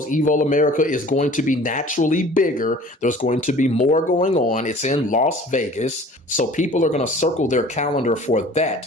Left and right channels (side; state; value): both; normal; correlation 0.47